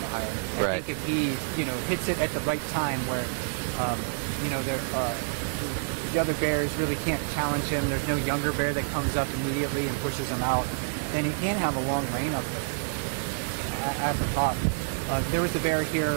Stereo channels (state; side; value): silent; left; digital silence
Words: the hierarchy. I think if he, hits it at the right time where, the other bears really can't challenge him, there's no younger bear that comes up immediately and pushes him out, then he can have a long reign up there at the top. There was a bear